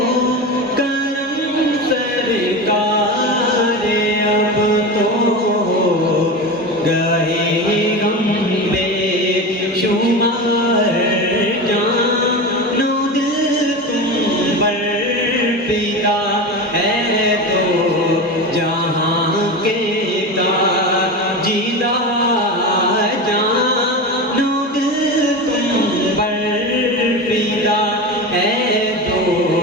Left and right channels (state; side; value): normal; both; correlation 0.24